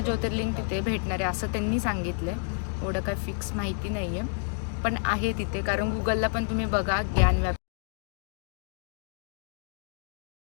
ज्योतिर्लिंग तिथे भेटणार आहे असं त्यांनी सांगितलं आहे. एवढं काय फिक्स माहिती नाही आहे, पण आहे तिथे. कारण गुगलला पण तुम्ही बघा Gyanvapi.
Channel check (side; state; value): right; silent; 58 dB below the other